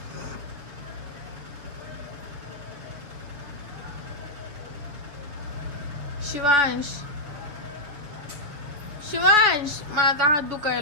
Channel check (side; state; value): left; late; 6.9 ms